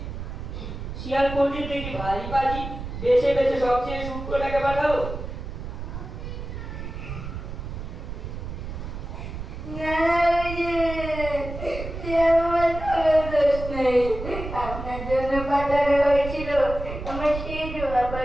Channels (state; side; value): noise; right; rumble, 8 dB below the sound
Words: শিয়াল পণ্ডিত দেখি ভারী পাজি, বেছে বেছে সবচেয়ে শুক্রটাকে পাঠাও। না, আমার কোনো দোষ নেই। আপনার জন্য পাঠানো হয়েছিল আমার সেই